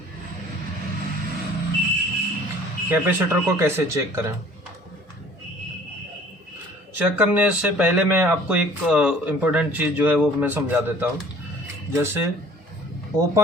कैपेसिटर को कैसे चेक करें? चेक करने से पहले मैं आपको एक इम्पोर्टेंट चीज़ जो है वो मैं समझा देता हूँ। जैसे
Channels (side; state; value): both; normal; correlation 0.51